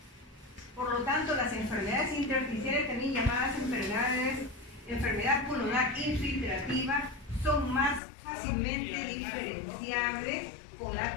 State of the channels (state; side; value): drops out; right; at 8.0 s